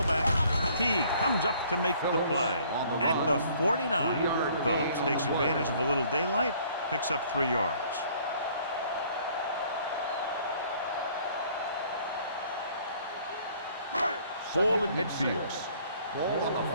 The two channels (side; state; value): both; inverted; correlation -0.58